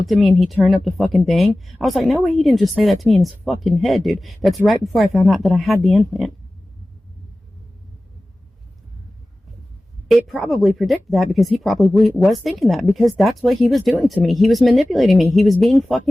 at me and he turned up the fucking thing. I was like, no way, he didn't just say that to me in his fucking head, dude. That's right before I found out that I had the implant. It probably predicted that, because he probably was thinking that, because that's what he was doing to me. He was manipulating me. He was being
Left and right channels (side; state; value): both; normal; correlation 0.97